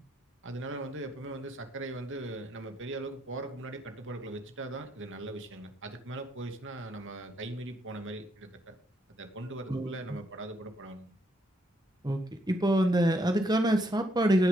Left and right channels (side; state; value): both; normal; correlation 0.75